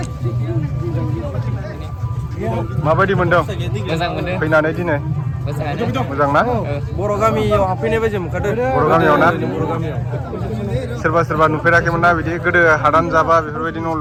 माबायदि मोनदों मोजां मोनदों फैनानै दिनै मोजां ना बर' गामियाव हाबफैनाय बायदि मोनखादों बर' गामियाव ना बर' गामियाव सोरबा नुफेराखैमोन ना बिदि गोदो हादान जाबा बेफोरबायदि न'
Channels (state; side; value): identical; both; correlation 1.00